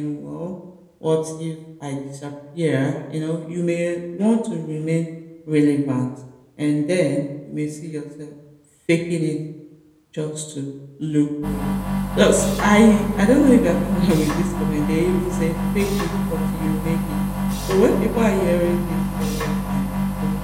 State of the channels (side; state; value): both; identical; correlation 1.00